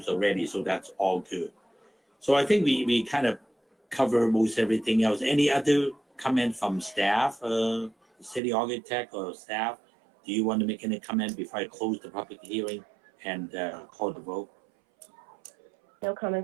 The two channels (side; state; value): left; drops out; at 8.4 s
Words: already, so that's all good. So I think we kind of cover most everything else. Any other comment from staff, city architect or staff? Do you want to make any comment before I close the public hearing and call the vote? No